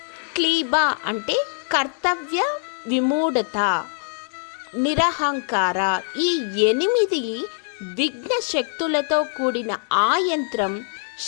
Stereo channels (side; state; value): right; silent; digital silence